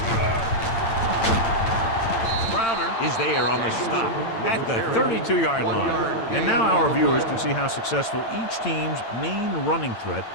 Crowder is there on the stop at the 32-yard line. And now our viewers can see how successful each team's main running threat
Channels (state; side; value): late; right; 8.8 ms